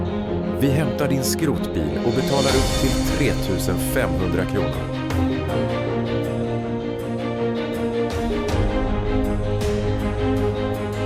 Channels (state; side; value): identical; both; correlation 1.00